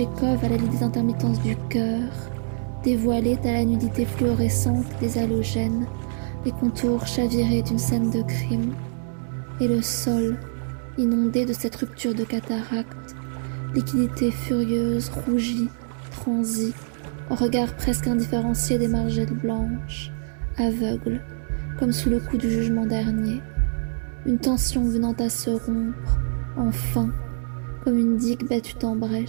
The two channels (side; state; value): left; silent; 58 dB below the other